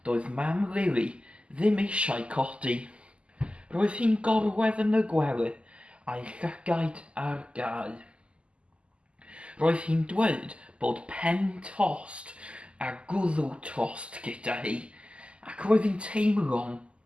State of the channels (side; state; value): left; late; 0.053 ms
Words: doedd mam Lili ddim eisiau codi. Roedd hi'n gorwedd yn y gwely a'i llygaid ar gau. Roedd hi'n dweud bod pen tost a gwddw tost gyda hi, ac roedd hi'n teimlo'n